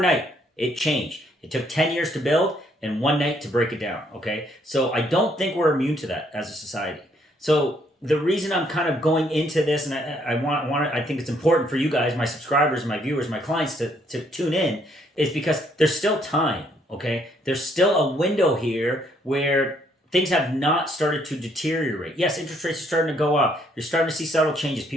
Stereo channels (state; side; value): normal; both; correlation 0.69